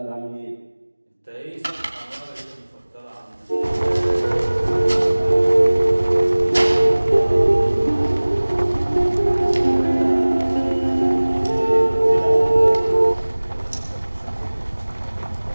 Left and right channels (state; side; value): inverted; both; correlation -1.00